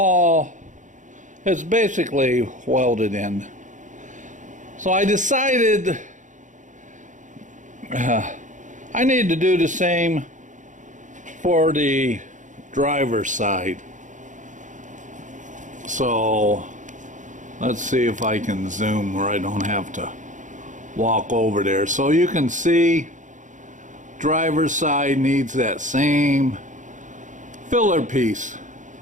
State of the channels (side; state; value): left; late; 0.36 ms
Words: it's basically welded in. So I decided I need to do the same for the driver's side. So let's see if I can zoom where I don't have to walk over there. So you can see driver's side needs that same filler piece.